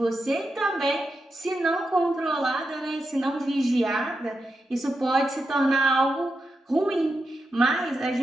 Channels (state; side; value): normal; both; correlation 0.87